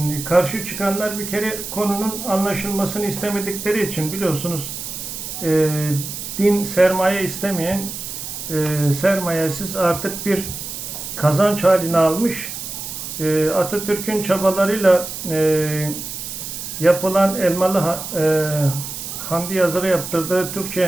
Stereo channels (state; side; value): noise; right; hiss, 8 dB below the sound